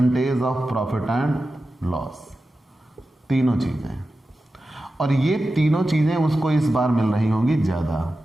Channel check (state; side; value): normal; both; correlation 0.93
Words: of profit and loss, तीनों चीजें। और ये तीनों चीजें उसको इस बार मिल रही होंगी ज्यादा।